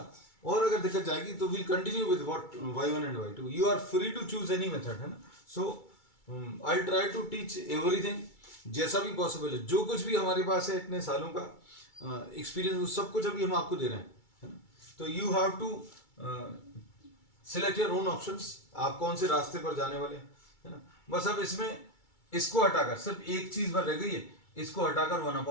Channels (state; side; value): late; right; 2.3 ms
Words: और अगर दिक्कत जाएगी तो will continue with what y1 and y2। You are free to choose any method, है ना। So I try to teach everything जैसा भी पॉसिबल है। जो कुछ भी हमारे पास है इतने सालों का एक्सपीरियंस, वो सब कुछ अभी हम आपको दे रहे हैं, है ना। तो you have to select your own options, आप कौन से रास्ते पर जाने वाले हैं, है ना। बस अब इसमें इसको हटाकर सिर्फ एक चीज भर रह गई है, इसको हटाकर